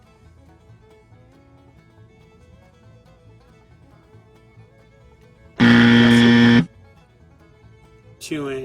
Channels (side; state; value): both; identical; correlation 1.00